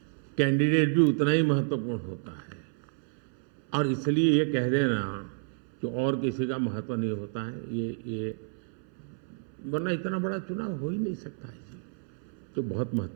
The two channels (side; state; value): left; silent; 58 dB below the other